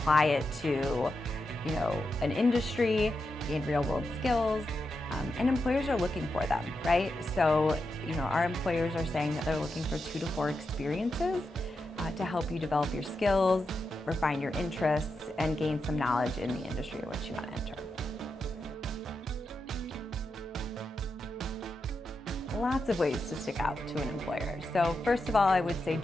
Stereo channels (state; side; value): normal; both; correlation 0.87